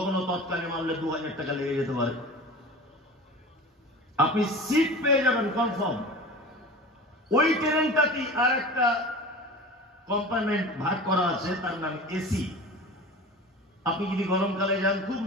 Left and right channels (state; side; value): normal; both; correlation 0.36